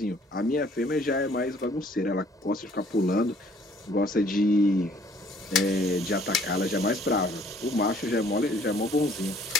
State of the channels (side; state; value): both; normal; correlation 0.59